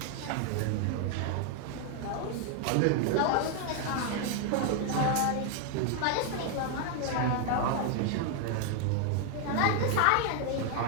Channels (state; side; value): different; both; correlation 0.00